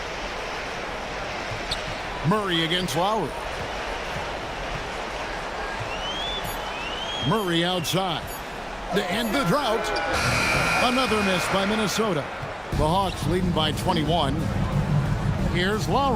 Murray against Lowry. Murray outside. To end the drought. Another miss by Minnesota. The Hawks leading by 21. Here's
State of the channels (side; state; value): both; identical; correlation 1.00